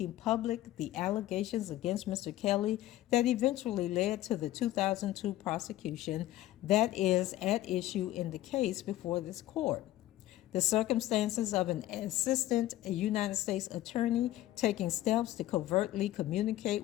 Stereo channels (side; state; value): right; quieter; 14.7 dB